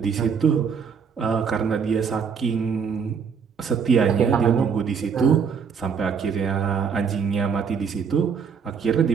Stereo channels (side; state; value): left; quieter; 6.4 dB